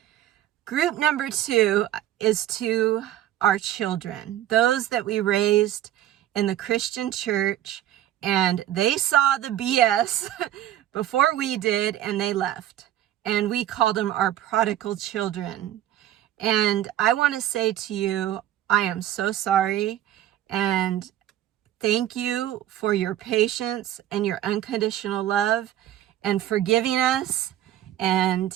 Group number 2 is to our children, those that we raised in the Christian church, and they saw the BS before we did, and they left. And we called them our prodigal children. And I want to say to you, I am so sorry, and thank you for your patience and your unconditional love and forgiving us, and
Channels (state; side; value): quieter; left; 12.5 dB